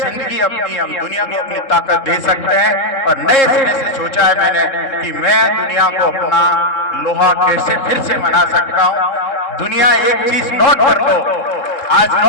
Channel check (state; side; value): late; right; 3.7 ms